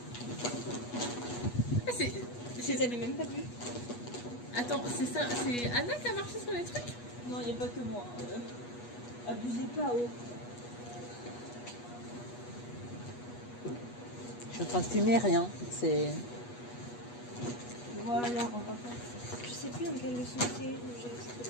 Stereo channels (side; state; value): right; late; 8.3 ms